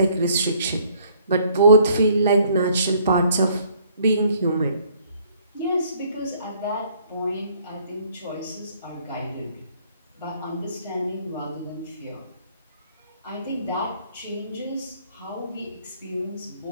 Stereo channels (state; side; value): inverted; both; correlation -0.62